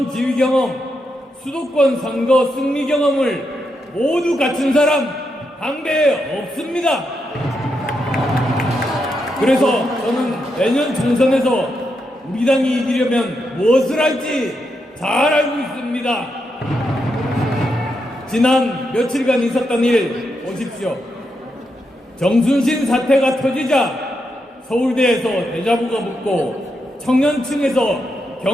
지휘 경험, 수도권 선거 승리 경험을 모두 갖춘 사람 당대에 없습니다. 그래서 저는 내년 총선에서 우리 당이 이기려면 무엇을 할지 잘 알고 있습니다. 지난 며칠간 있었던 일 보십시오. 정순신 사태가 터지자 서울대에서 대자보가 붙고 청년층에서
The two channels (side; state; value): both; normal; correlation 0.83